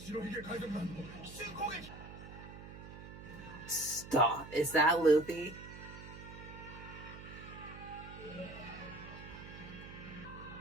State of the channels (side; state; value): right; noise; hum, 13 dB below the sound